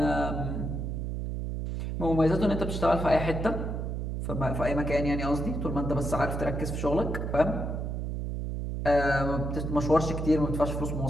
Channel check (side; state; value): right; noise; hum, 3 dB below the sound